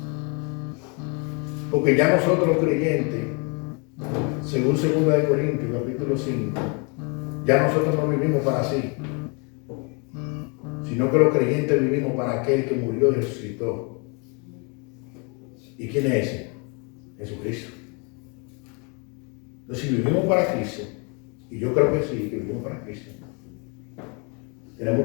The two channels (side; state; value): right; quieter; 33.7 dB